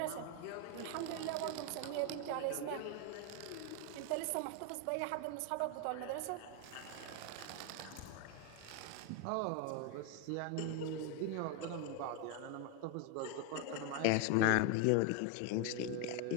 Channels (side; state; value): both; different; correlation 0.01